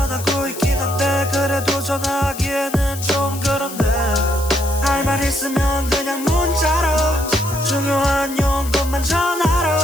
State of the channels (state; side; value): noise; left; hiss, 12 dB below the sound